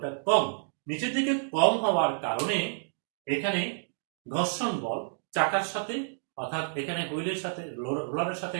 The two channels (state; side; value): silent; left; digital silence